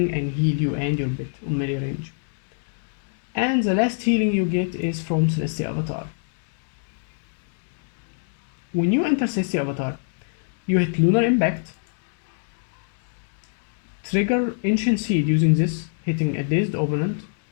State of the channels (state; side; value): silent; right; digital silence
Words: and heal you and your bit on melee range. And the last healing you get is from Celestial Avatar. When you enter Celestial Avatar, you hit Lunar Impact, trigger Ancient Seed using this, hitting a dazed opponent,